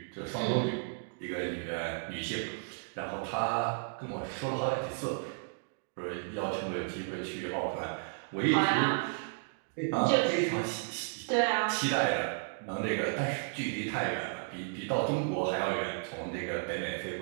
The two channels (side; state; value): left; silent; digital silence